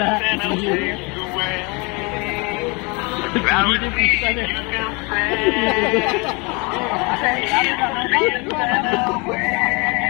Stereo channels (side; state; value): right; quieter; 29.0 dB